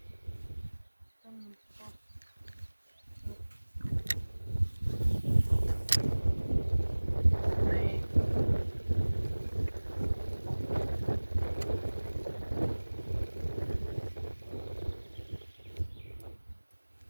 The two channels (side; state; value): both; inverted; correlation -1.00